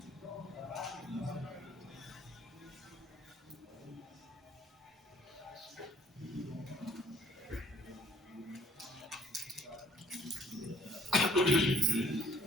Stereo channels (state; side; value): normal; both; correlation 0.60